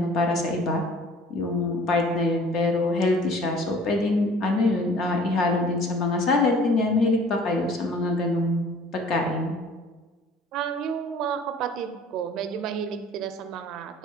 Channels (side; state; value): both; normal; correlation 0.50